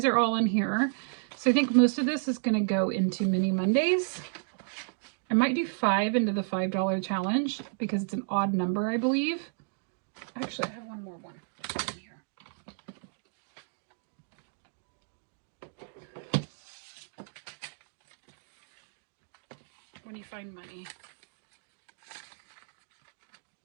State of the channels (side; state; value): left; silent; digital silence